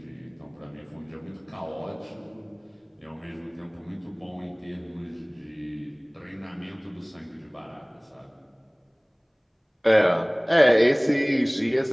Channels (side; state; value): both; identical; correlation 1.00